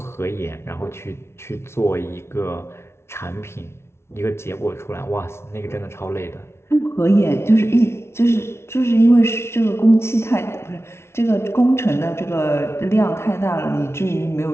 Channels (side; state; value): right; late; 0.12 ms